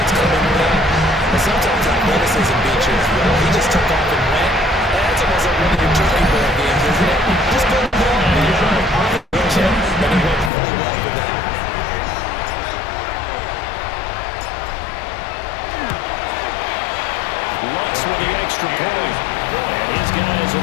it's coming or not. But sometimes athleticism beats you as well. He just took off and went. That's almost like one of your turkey ball games, isn't it? Just go to the ball and you're on the chip, and it went really well for that. Lutz with the extra point. And his guys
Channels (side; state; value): right; drops out; at 10.5 s